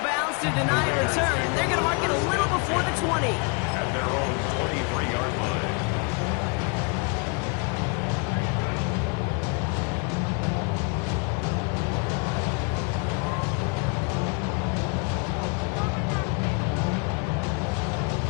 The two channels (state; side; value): quieter; right; 34.2 dB